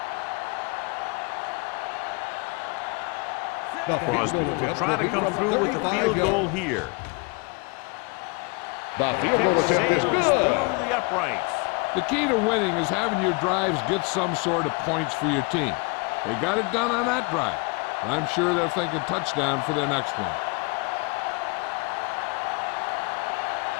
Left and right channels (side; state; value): right; quieter; 30.3 dB